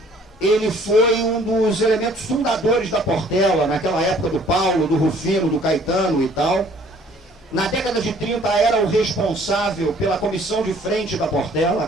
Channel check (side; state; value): both; normal; correlation 0.57